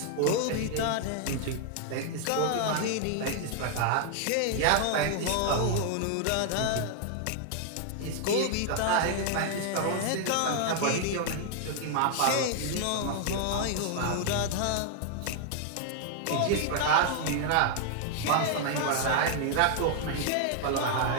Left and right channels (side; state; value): both; different; correlation 0.00